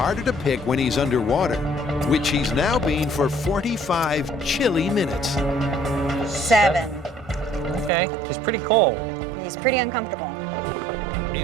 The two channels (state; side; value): drops out; left; at 7.9 s